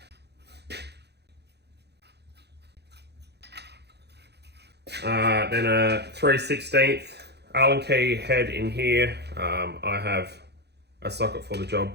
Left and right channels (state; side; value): late; left; 0.48 ms